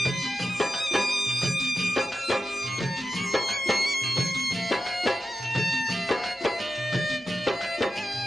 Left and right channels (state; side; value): normal; both; correlation 0.90